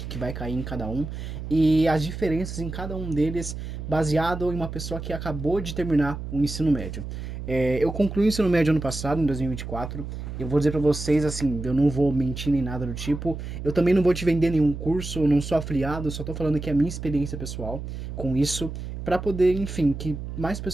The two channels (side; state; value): right; noise; hum, 7 dB below the sound